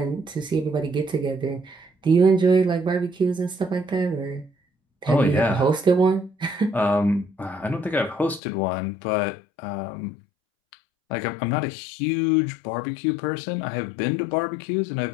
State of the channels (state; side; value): drops out; right; at 8.4 s